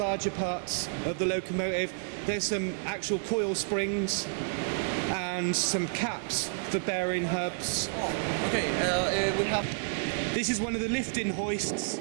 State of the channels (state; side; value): silent; left; 58 dB below the other